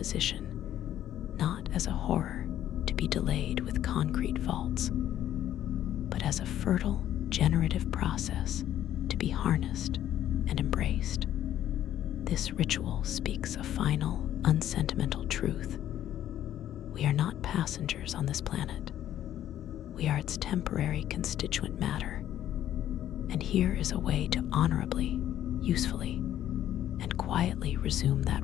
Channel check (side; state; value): right; quieter; 11.7 dB